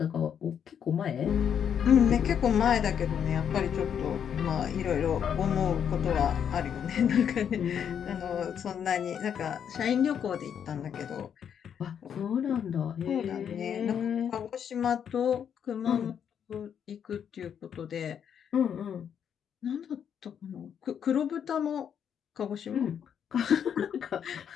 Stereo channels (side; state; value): right; quieter; 8.3 dB